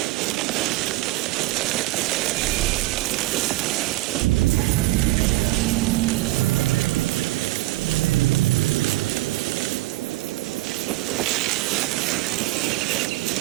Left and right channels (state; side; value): quieter; left; 19.1 dB